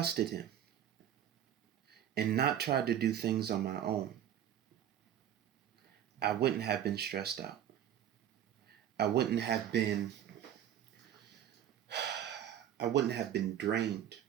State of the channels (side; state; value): left; quieter; 10.3 dB